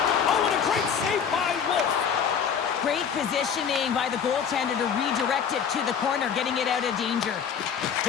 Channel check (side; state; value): right; quieter; 7.4 dB